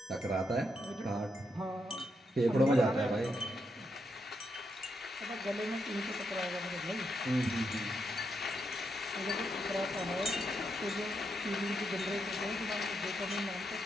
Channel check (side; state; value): both; normal; correlation 0.81